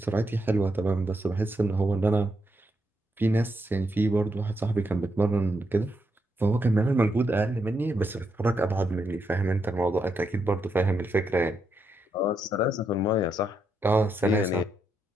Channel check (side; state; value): both; normal; correlation 0.80